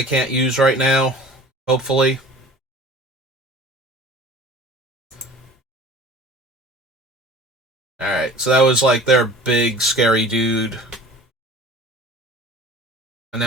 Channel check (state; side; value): normal; both; correlation 0.43